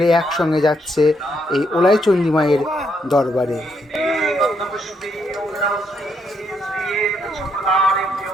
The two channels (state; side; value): normal; both; correlation 0.75